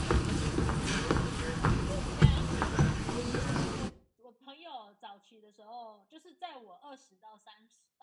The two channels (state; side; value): identical; both; correlation 1.00